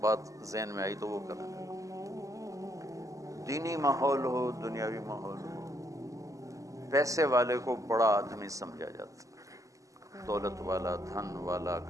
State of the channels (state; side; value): late; left; 0.16 ms